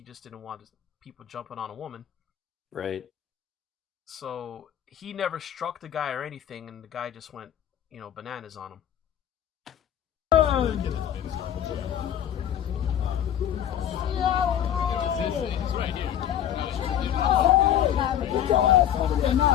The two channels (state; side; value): quieter; right; 10.4 dB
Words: just didn't want people jumping on a woman. Right. So he never struck the guy or anything, and the guy just went, bananas on him.